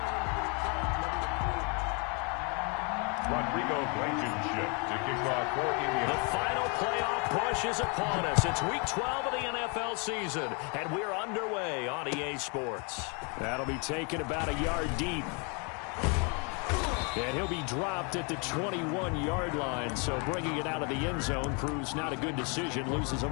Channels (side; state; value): right; quieter; 34.1 dB